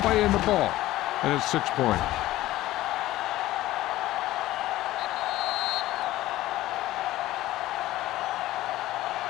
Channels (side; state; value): right; quieter; 15.9 dB